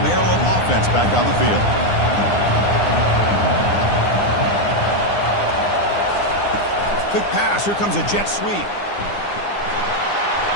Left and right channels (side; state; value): right; late; 9.8 ms